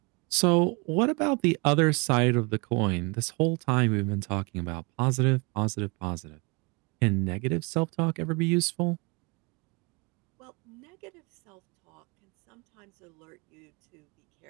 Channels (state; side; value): quieter; left; 28.7 dB